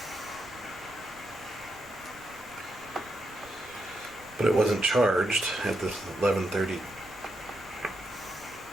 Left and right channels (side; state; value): right; noise; rumble, 23 dB below the sound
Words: But it wasn't charged at the 11:30.